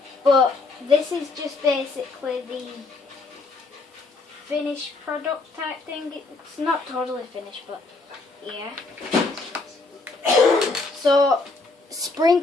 But this is just basically the finished product type thing. It's not totally finished, but yeah. So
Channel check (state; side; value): quieter; right; 3.5 dB